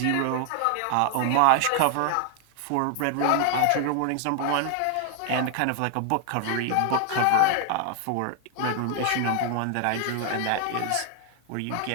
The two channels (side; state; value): both; different; correlation 0.00